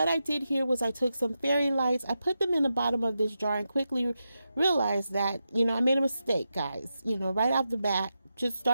I did here was I took some fairy lights, I put them in the bottom of this jar, and quickly realized that, you know, I made a mistake, guys. You know, right off the bat, just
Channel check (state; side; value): inverted; both; correlation -0.88